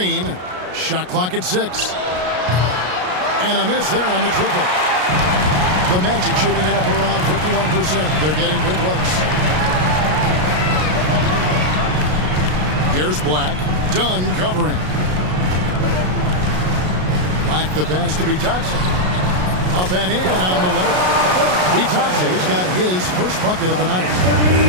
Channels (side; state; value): left; late; 33 ms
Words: Shot clock at 6. And a miss there on the triple. The Magic shooting it up around 51%. They're getting good looks. Here's Black. Dunn covering. Black the pass to Bitadze. Up and in on the layup. Bitadze's got his first bucket of the night.